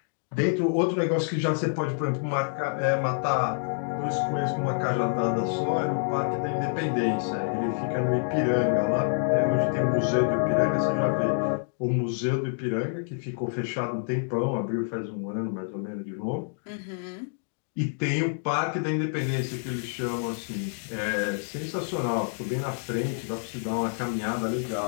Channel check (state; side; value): silent; right; digital silence